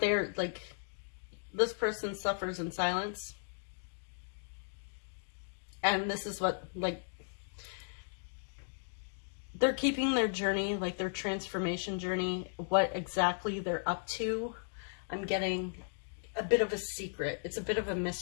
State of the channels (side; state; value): right; silent; digital silence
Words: like, this person suffers in silence. And this is what, like, they're keeping their journey, like their transformation journey, what exactly they're up to. I'm getting a bit of a secret. It's a bit of a